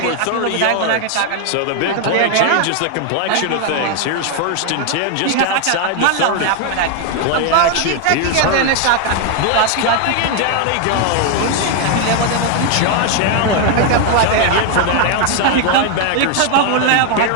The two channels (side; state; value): both; different; correlation 0.00